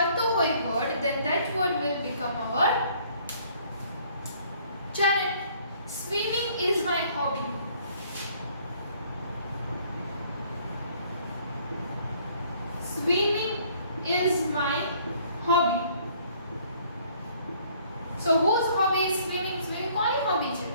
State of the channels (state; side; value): inverted; both; correlation -0.60